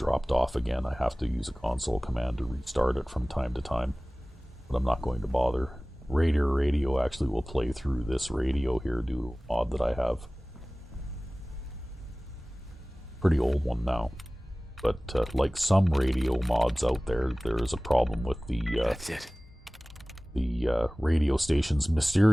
off again. I have to use a console command to restart it from time to time. But I'm not going to bother. Raider radio actually will play through this radio here due to a mod that I have. Pretty old one now. But like some radio mods out there, there is a problem with the That's it. The radio stations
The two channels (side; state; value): both; normal; correlation 0.98